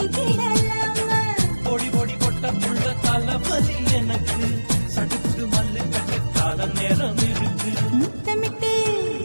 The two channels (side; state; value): both; inverted; correlation -1.00